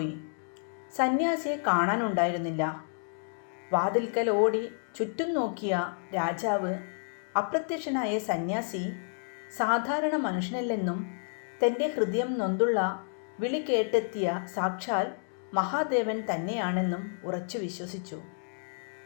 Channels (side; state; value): right; silent; digital silence